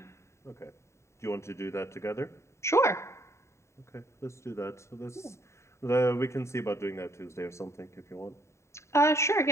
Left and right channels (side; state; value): right; late; 0.14 ms